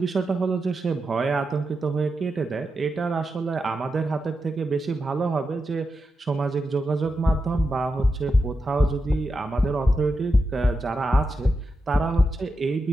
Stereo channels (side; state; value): both; normal; correlation 0.88